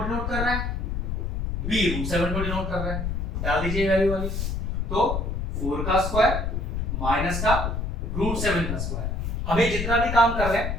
कर रहा है, b √7 को डिनोट कर रहा है। डाल दीजिए वैल्यू वाली, तो 4 का स्क्वायर माइनस का √7 का स्क्वायर। हमें जितना भी काम कर रहे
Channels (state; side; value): noise; left; rumble, 2 dB below the sound